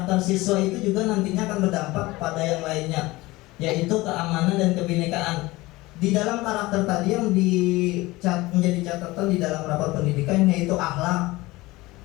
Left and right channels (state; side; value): quieter; right; 20.3 dB